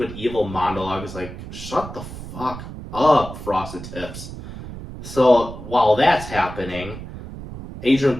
evil monologue. It's like, shut the fuck up, Frosted Tips. So while that's happening, Adrian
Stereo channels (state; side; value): noise; right; rumble, 11 dB below the sound